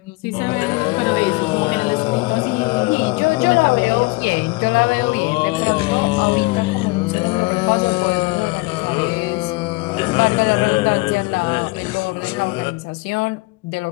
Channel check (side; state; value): right; quieter; 24.3 dB